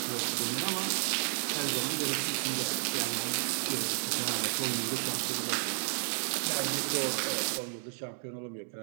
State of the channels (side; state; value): left; silent; digital silence